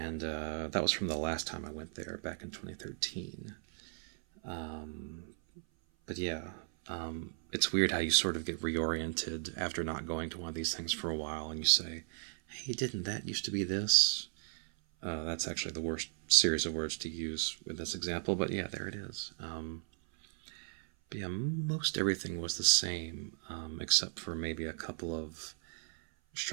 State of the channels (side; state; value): left; silent; 54 dB below the other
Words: that was from the last time I went there back in 2013. But yeah, it's weird how you sort of get reoriented after not going to one of these things for a while, and you say, hey, didn't that used to be this? That's actually the worst series of words to use with this example, but yeah, there it is. But yeah, most everything was the same, except for maybe a couple of